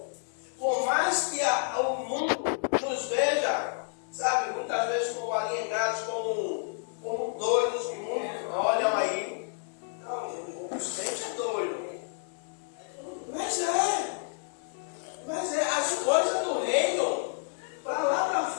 Por mais que o mundo nos veja, sabe, muitas vezes como alienados, como doidos, que muitos olham aí. Não, o crente é doido. Mas é as coisas do reino, para lá para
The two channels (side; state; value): right; silent; 58 dB below the other